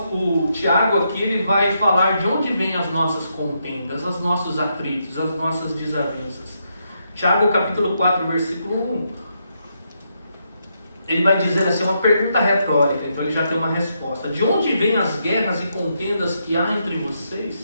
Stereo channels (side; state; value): both; inverted; correlation -0.80